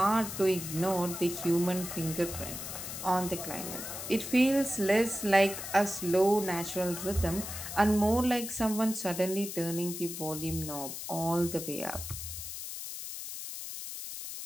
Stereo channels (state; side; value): noise; left; hiss, 8 dB below the sound